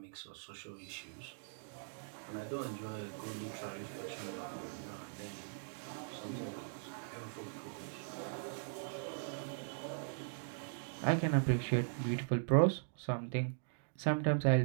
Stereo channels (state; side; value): silent; left; digital silence